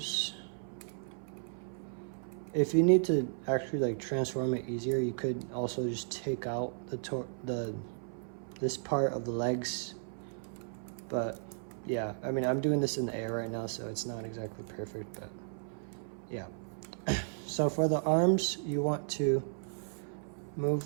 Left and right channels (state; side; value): silent; left; 55 dB below the other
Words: If you need to actually like transform it easier, you could also just take out this part of the legs. But yeah, I mean, I'm doing this in the air right now, so it's not exactly perfect, but yeah. So for the arms, you want to